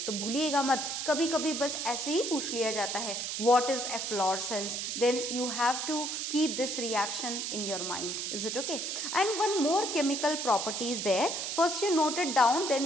तो भूलिएगा मत, कभी कभी बस ऐसे ही पूछ लिया जाता है what is efflorescence, then you have to keep this reaction in your mind. Is it okay? And one more chemical property is there. First you note it down,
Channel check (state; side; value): noise; right; hiss, 3 dB below the sound